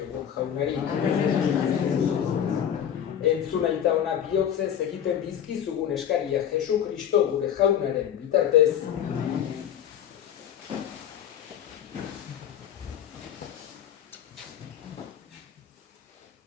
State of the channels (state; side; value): quieter; right; 9.4 dB